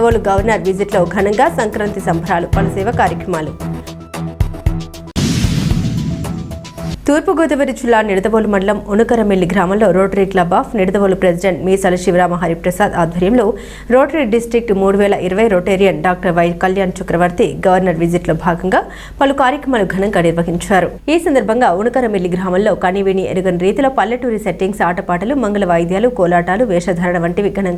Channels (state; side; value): identical; both; correlation 1.00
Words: governor విజిట్లో ఘనంగా సంక్రాంతి సంబరాలు, పలు సేవా కార్యక్రమాలు. తూర్పుగోదావరి జిల్లా నిడదవోలు మండలం ఉనకరమిల్లి గ్రామంలో rotary club of Nidadavolu president Meesala Sivarama Hariprasad ఆధ్వర్యంలో rotary district 3020 rotarian doctor Y Kalyan Chakravarthi governor visit లో భాగంగా పలు కార్యక్రమాలు ఘనంగా నిర్వహించారు. ఈ సందర్భంగా ఉనకరమిల్లి గ్రామంలో కనివిని ఎరుగని రీతిలో పల్లెటూరి సెట్టింగ్స్, ఆటపాటలు, మంగళ వాయిద్యాలు, కోలాటాలు, వేషధారణ వంటివి